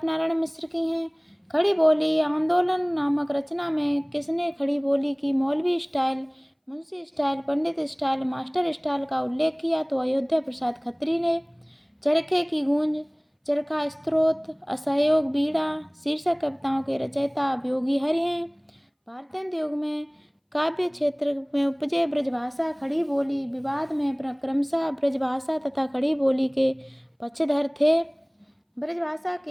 नारायण मिश्र की हैं। खड़ी बोली आंदोलन नामक रचना में किसने खड़ी बोली की मौलवी स्टाइल, मुंशी स्टाइल, पंडित स्टाइल, मास्टर स्टाइल का उल्लेख किया? तो अयोध्या प्रसाद खत्री ने। चरखे की गूंज, चरखा स्त्रोत, असहयोग बीड़ा शीर्षक कविताओं के रचयिता योगी हरि हैं। भारतेंदु युग में काव्य क्षेत्र में उपजे ब्रजभाषा खड़ी बोली विवाद में क्रमशः ब्रजभाषा तथा खड़ी बोली के पक्षधर थे। ब्रजभाषा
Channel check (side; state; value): both; identical; correlation 1.00